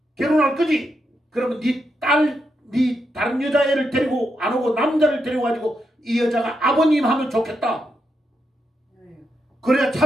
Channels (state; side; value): normal; both; correlation 0.83